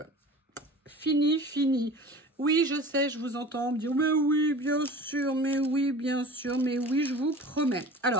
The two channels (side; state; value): both; normal; correlation 0.40